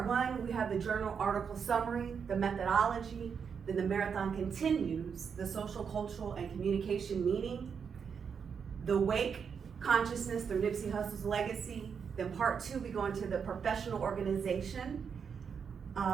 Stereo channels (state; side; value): quieter; left; 6.6 dB